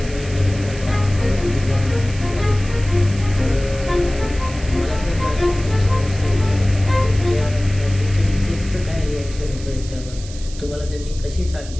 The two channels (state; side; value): noise; right; hiss, 16 dB below the sound